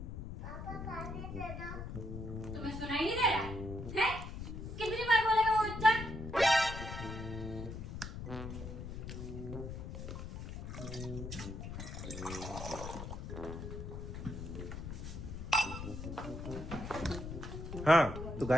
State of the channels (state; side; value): noise; left; rumble, 7 dB below the sound